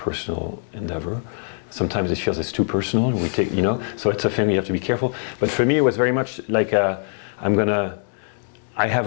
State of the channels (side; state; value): right; silent; digital silence